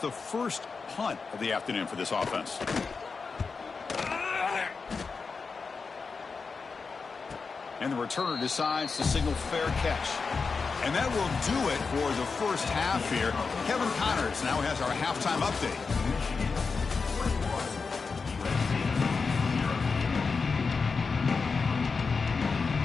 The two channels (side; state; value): right; quieter; 4.8 dB